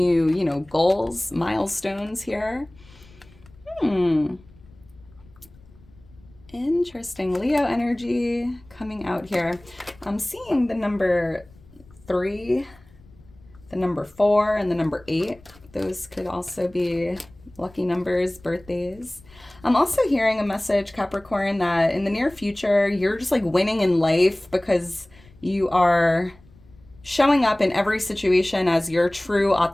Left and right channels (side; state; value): left; noise; rumble, 26 dB below the sound